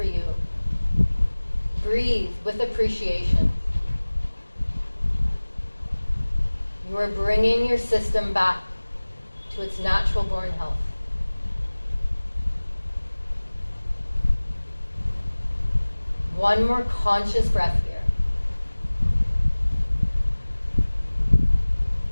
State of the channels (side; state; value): both; inverted; correlation -1.00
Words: you, breathe with appreciation. You are bringing your system back to its natural born health. One more conscious breath here.